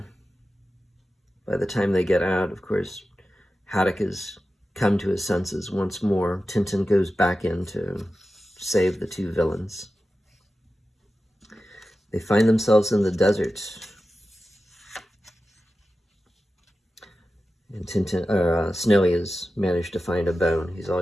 by the time they get out, of course, Haddock has come to his senses once more. Tintin goes back in to save the two villains. They find themselves in the desert. And Tintin, Snowy has managed to find a bone. He's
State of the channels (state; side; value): normal; both; correlation 0.93